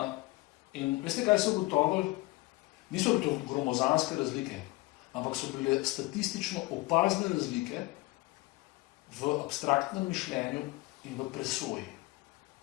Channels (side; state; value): right; quieter; 22.2 dB